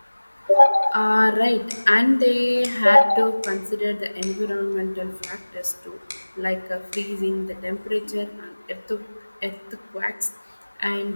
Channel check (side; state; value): both; inverted; correlation -1.00